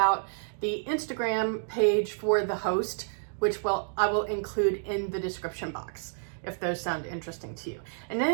the Instagram page for the host, which I will include in the description box if those sound interesting to you. And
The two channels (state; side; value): silent; left; digital silence